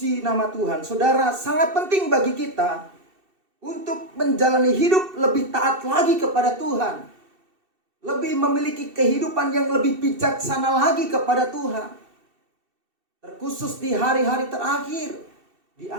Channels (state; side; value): late; left; 2.7 ms